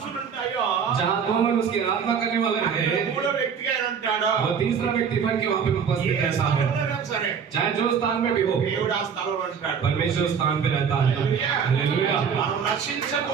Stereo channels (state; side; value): quieter; left; 6.8 dB